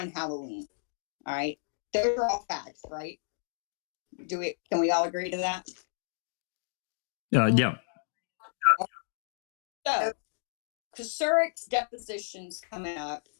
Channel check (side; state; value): right; silent; digital silence